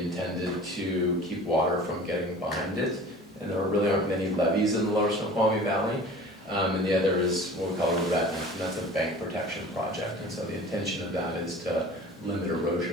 to keep water from getting behind it. And there really aren't many levees in the lower Snoqualmie Valley. And the other is what we call a revetment, and that's a bank protection project. And so the intention of that is to limit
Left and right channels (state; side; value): normal; both; correlation 0.42